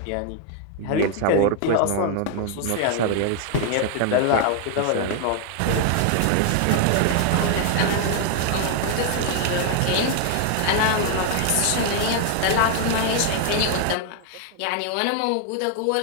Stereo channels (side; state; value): both; different; correlation 0.00